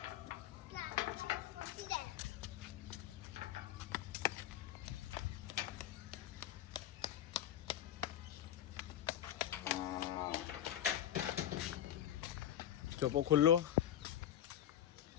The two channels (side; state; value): right; quieter; 11.3 dB